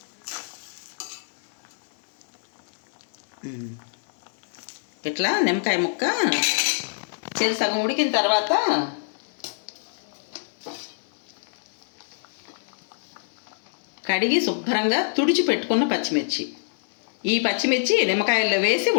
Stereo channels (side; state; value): right; silent; digital silence